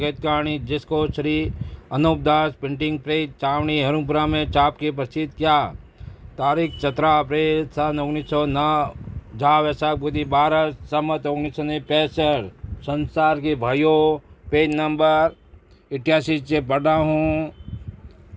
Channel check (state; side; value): identical; both; correlation 1.00